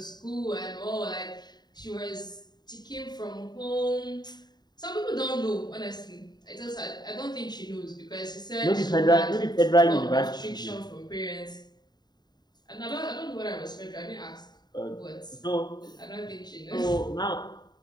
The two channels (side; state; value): right; late; 0.20 ms